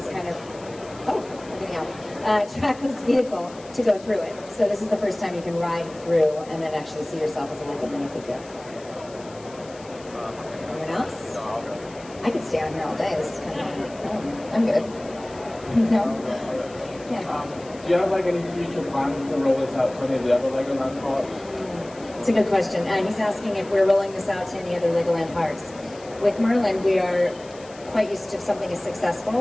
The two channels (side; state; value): left; noise; hiss, 22 dB below the sound